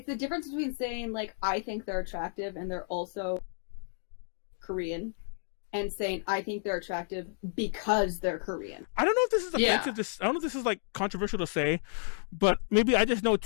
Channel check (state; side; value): silent; right; digital silence